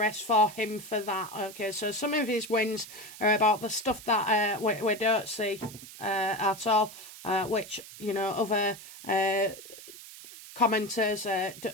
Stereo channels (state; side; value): noise; right; hiss, 16 dB below the sound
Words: for him for that, okay? So some of his wins are about the stuff that we don't see at all, which, other commenters,